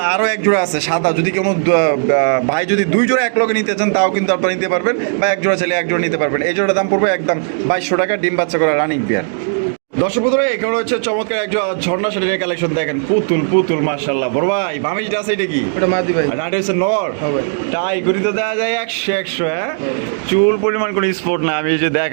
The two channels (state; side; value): silent; left; digital silence